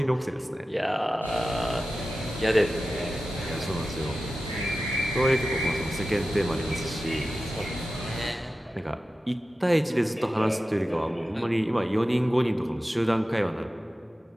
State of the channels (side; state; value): both; normal; correlation 0.94